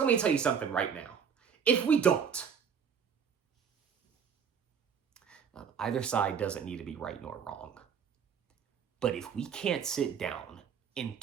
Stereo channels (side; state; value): left; quieter; 7.2 dB